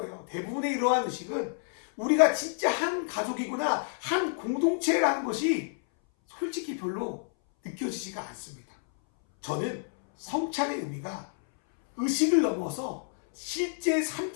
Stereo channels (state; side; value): silent; right; 58 dB below the other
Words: 대부분의 이러한 의식은 우리가 진짜 한 가족이구나, 한 공동체라는 것이 솔직히 별로 느껴지지가 않습니다. 저는 성찬의 의미가 의식을 넘어서 실제 삶